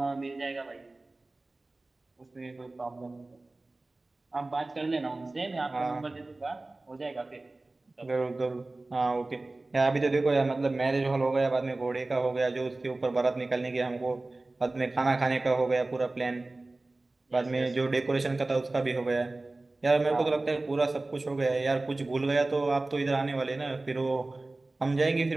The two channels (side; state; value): left; quieter; 3.1 dB